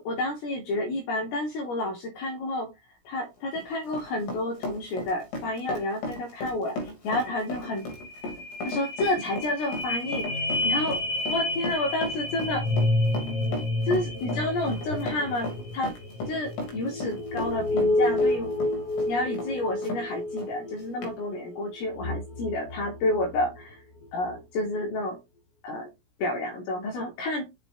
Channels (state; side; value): late; right; 17 ms